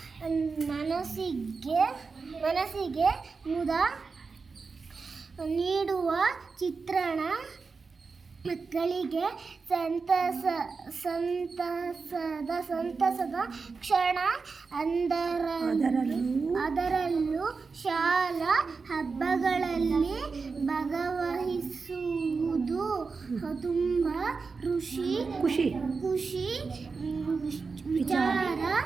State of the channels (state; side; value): quieter; left; 4.7 dB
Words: ಮನಸ್ಸಿಗೆ ಮುದ ನೀಡುವ ಚಿತ್ರಣ, ಮಕ್ಕಳಿಗೆ ಸಂತಸದ ಕ್ಷಣ. ಅದರಲ್ಲೂ ಶಾಲಾ ಹಬ್ಬಗಳಲ್ಲಿ ಭಾಗವಹಿಸುವುದು ತುಂಬ ಖುಷಿ ವಿಚಾರ.